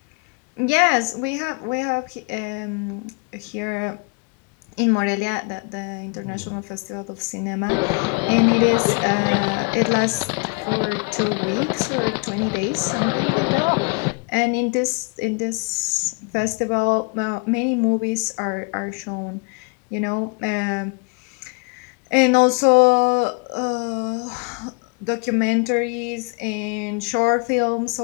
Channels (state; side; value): quieter; right; 32.8 dB